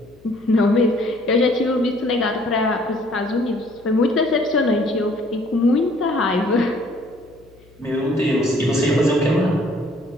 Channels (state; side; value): noise; left; hum, 28 dB below the sound